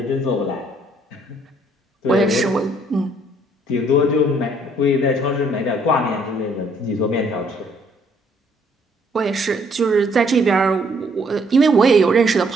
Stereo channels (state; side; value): normal; both; correlation 0.65